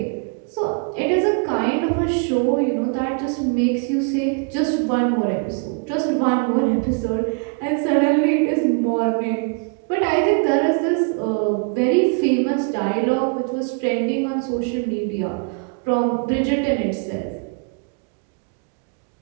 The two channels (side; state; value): left; quieter; 38.6 dB